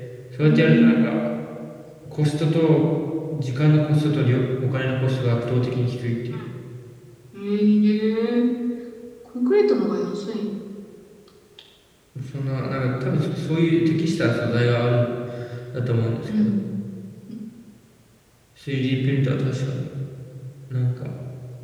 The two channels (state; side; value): identical; both; correlation 1.00